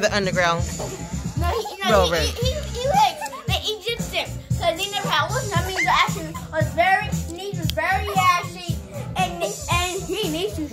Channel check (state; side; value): identical; both; correlation 1.00